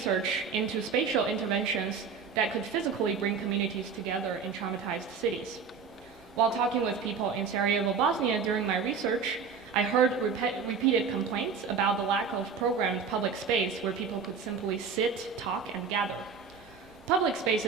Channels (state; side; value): quieter; left; 5.7 dB